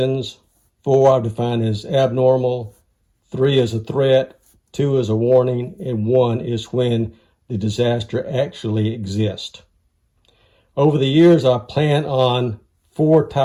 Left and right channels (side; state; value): both; identical; correlation 1.00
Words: 4 I've defined as abnormal. 3 is a threat. 2 is a warning. And 1 is when the disaster actually exists. Over the years, I plan on 4